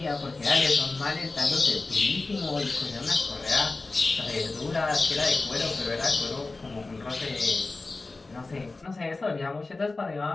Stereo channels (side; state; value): right; quieter; 3.5 dB